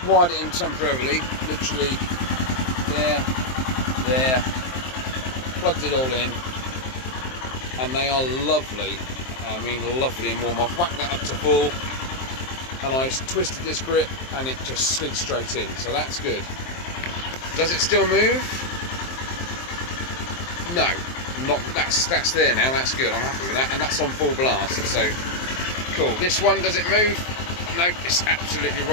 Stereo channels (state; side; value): late; right; 23 ms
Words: wired it in temporarily. Literally there. Plugged it all in. And they are lovely. I mean, lovely and warm. I've whacked that up to full. And I twisted this grip and it just slid straight in. So that's good. Does it still move? No. That's there now, that's good, I'm happy with that, and that's on full blast, so cool. This one, does it move? No, it's absolutely